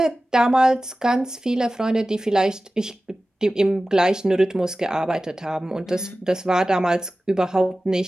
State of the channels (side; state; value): both; normal; correlation 0.96